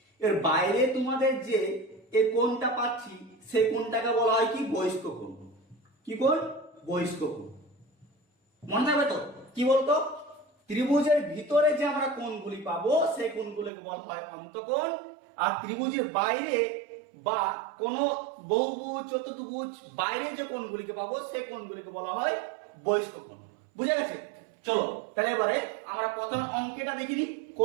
এর বাইরে তোমাদের যে এই কোণটা পাচ্ছি সেই কোণটাকে বলা হয় কি? বহিষ্ক কোণ। কি কোণ? বহিষ্ক কোণ। মনে থাকবে তো? কি বলতো? ত্রিভুজের ভিতরে যে আমরা কোণগুলি পাবো সেই কোণগুলোকে বলা হয় অন্তঃকোণ, আর ত্রিভুজের বাইরে বা কোন বহুভুজ চতুর্ভুজ বাইরে যে কোণগুলিকে পাবো সেই কোণগুলিকে বলা হয় বহিষ্ক কোণ। বুঝা গেছে? চলো তাহলে এবারে আমরা প্রথম অঙ্কটা দেখিনি,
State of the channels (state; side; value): drops out; left; at 13.7 s